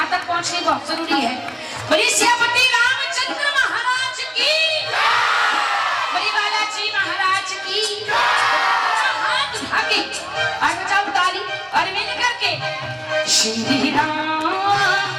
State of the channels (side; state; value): both; identical; correlation 1.00